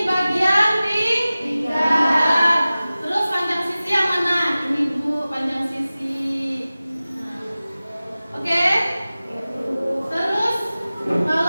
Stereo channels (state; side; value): inverted; both; correlation -0.97